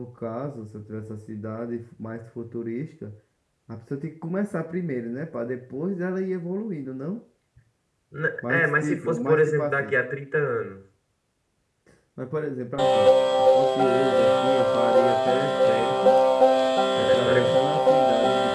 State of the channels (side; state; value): both; identical; correlation 1.00